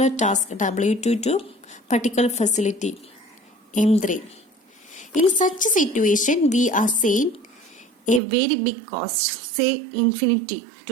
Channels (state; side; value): drops out; left; at 8.2 s